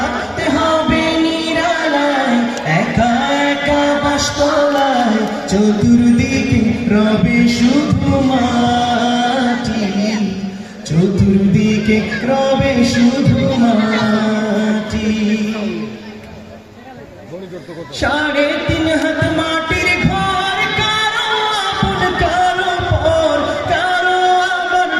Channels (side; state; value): both; identical; correlation 1.00